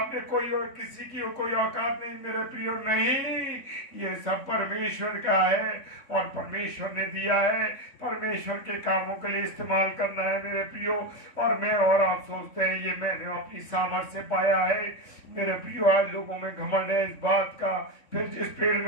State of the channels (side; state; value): right; late; 3.6 ms